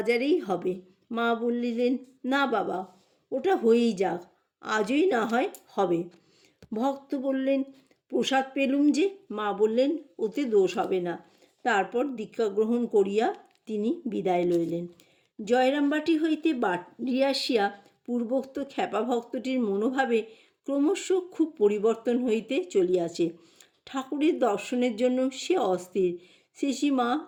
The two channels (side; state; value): both; identical; correlation 1.00